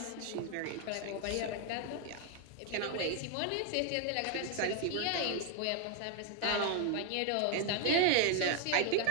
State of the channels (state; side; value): different; both; correlation 0.01